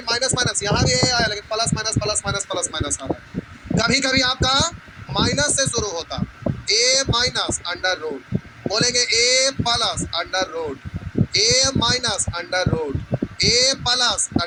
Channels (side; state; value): both; identical; correlation 1.00